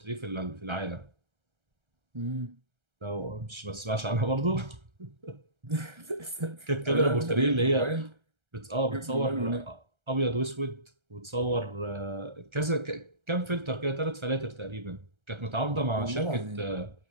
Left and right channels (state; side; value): late; left; 1.3 ms